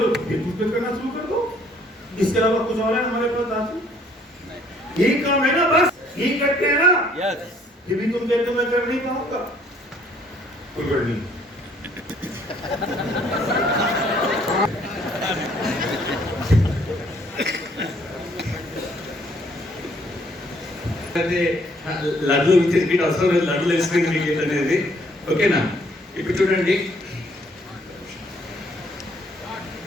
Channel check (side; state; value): both; normal; correlation 0.63